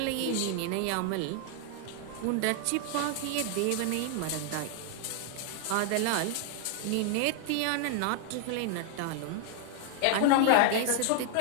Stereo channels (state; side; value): different; both; correlation 0.00